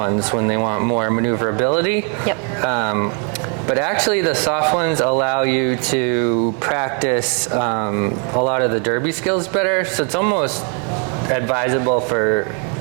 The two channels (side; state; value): left; quieter; 39.2 dB